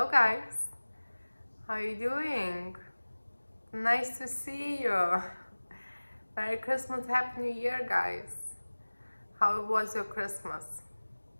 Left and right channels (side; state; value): both; inverted; correlation -1.00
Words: guys, how you doing? Nice to see you. Merry Christmas, Happy New Year, guys. How was your Christmas?